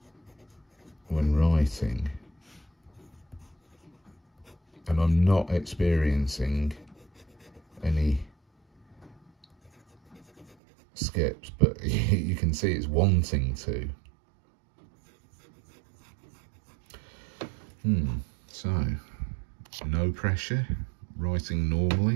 when writing, and I'm not experiencing any skips, but you can see it's wanting to. So no pressure, writing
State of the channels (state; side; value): drops out; left; at 10.6 s